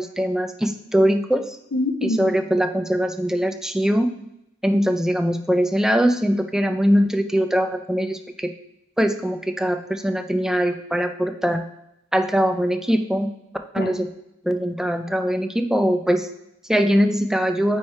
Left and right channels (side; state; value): both; normal; correlation 0.93